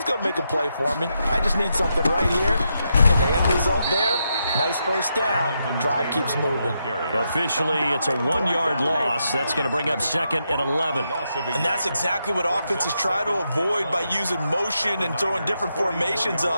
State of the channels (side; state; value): both; inverted; correlation -0.83